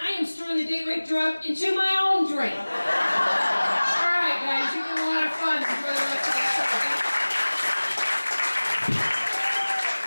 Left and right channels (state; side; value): inverted; both; correlation -1.00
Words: I am storing the date rape drug into my own drink. All right, guys, you can have a lot of fun. Enjoy the rest of